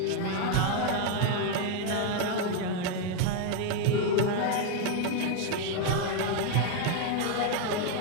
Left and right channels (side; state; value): both; different; correlation 0.01